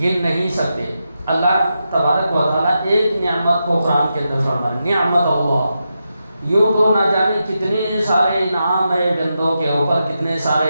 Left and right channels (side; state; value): both; inverted; correlation -0.87